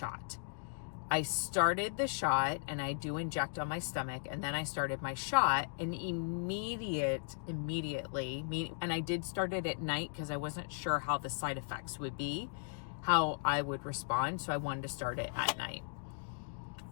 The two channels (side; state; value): right; silent; digital silence